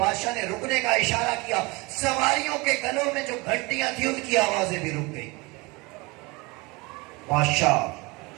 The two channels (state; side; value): quieter; left; 25.6 dB